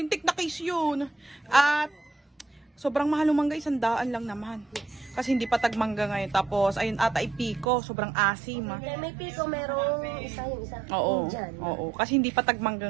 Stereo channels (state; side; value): drops out; left; at 7.7 s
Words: na case yun. At sobrang mahal ng mangga, 100 lang naman. Kasi hindi pa tagmangga ngayon. Tapos ayun ata ipiko, sobrang asim. May piko, merong isa yung isa. Oo, oo. Kasi hindi pa